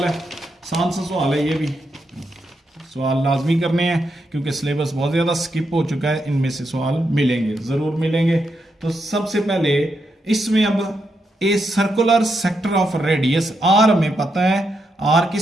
है, आसान सा सवाल है, ये भी सवाल लाजमी करने हैं क्योंकि सिलेबस बहुत ज़्यादा स्किप हो चुका है, इनमें से सवाल मिलेंगे, ज़रूर मिलेंगे। तो सबसे पहले इसमें अब a circular sector of radius, r हमें पता है, आर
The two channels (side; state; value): both; normal; correlation 0.82